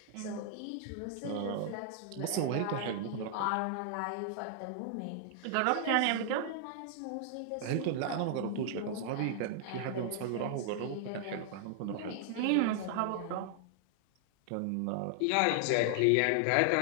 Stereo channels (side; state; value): both; different; correlation 0.00